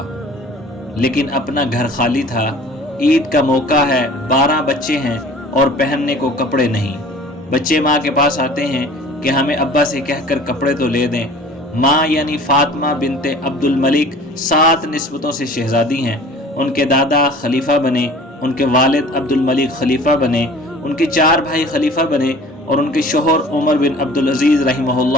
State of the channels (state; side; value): normal; both; correlation 0.46